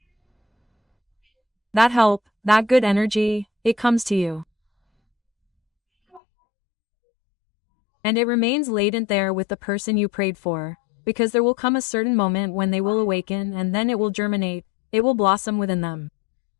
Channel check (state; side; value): drops out; right; at 6.2 s